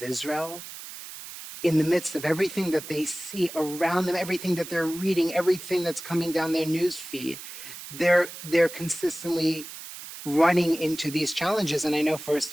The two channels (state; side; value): noise; right; hiss, 12 dB below the sound